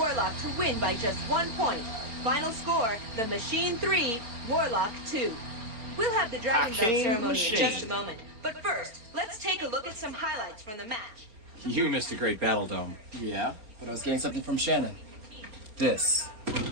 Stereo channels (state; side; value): late; left; 4.4 ms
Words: to win by just 1 point. Final score, the Machine 3, Warlock 2. We'll have the Dragon Belt Hakeem ceremony Machine. in just a moment. But first, let's take a look at some highlights from the match. You missed a great battle, Dome. Yeah, but I was getting something from Shannon. This.